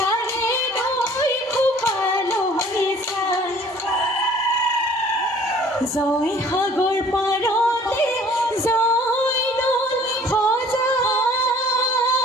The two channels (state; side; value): normal; both; correlation 0.53